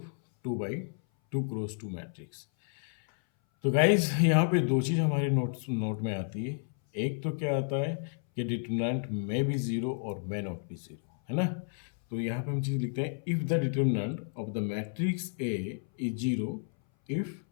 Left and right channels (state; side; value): silent; right; 57 dB below the other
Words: 2/2 cross 2 matrix. तो गाइज यहाँ पे दो चीज़ हमारे नोट में आती है। एक तो क्या आता है कि डिटरमिनेंट में भी ज़ीरो और में नॉट भी ज़ीरो, है ना। तो यहाँ पे हम चीज़ लिखते हैं, if the determinant of the matrix A is zero, if